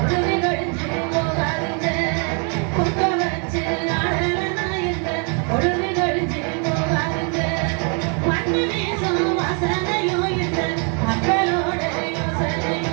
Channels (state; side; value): quieter; left; 38.8 dB